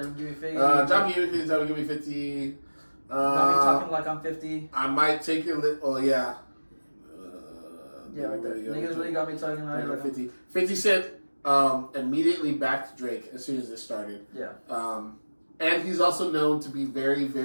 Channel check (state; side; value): inverted; both; correlation -1.00